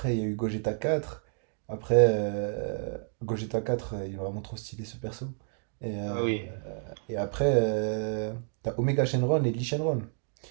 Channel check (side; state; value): left; silent; 58 dB below the other